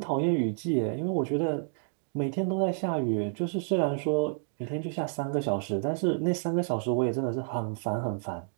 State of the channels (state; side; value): silent; left; digital silence